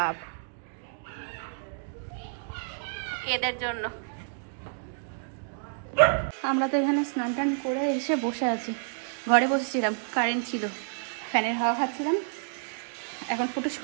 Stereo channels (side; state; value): left; silent; digital silence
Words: এদের জন্য। আমরা তো এখানে স্নান টান করে এসে বসে আছি। ঘরে বসেছিলাম, কারেন্ট ছিল, ফ্যানের হাওয়া খাচ্ছিলাম। এখন ফুটুস